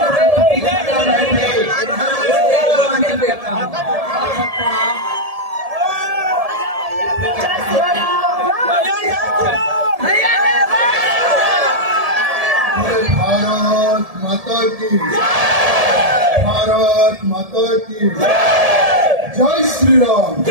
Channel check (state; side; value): late; left; 1.7 ms